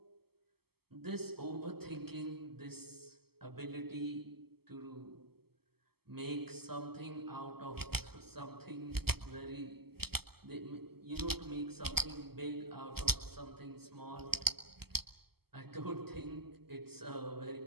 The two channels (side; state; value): left; late; 0.96 ms